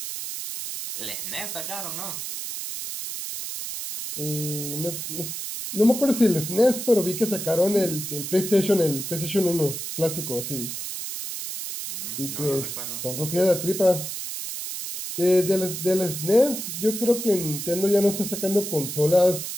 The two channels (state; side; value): noise; right; hiss, 6 dB below the sound